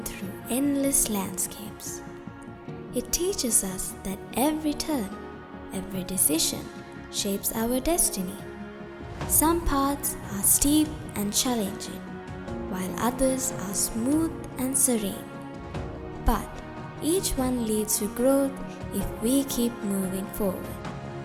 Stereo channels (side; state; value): both; identical; correlation 1.00